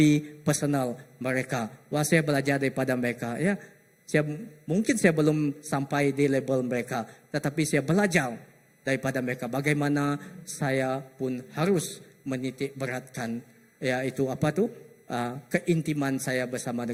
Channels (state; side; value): identical; both; correlation 1.00